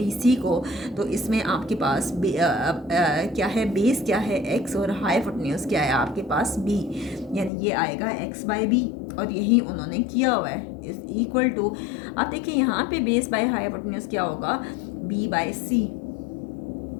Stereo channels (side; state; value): right; drops out; at 7.5 s